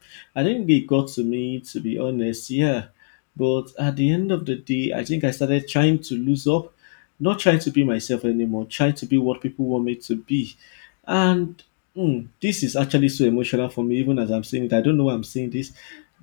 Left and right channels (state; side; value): silent; right; digital silence